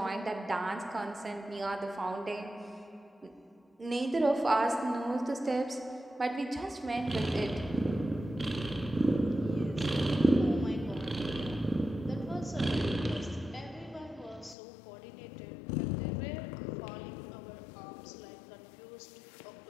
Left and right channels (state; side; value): drops out; right; at 14.6 s